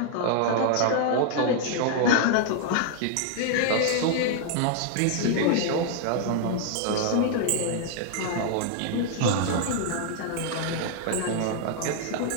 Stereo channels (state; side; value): different; both; correlation 0.00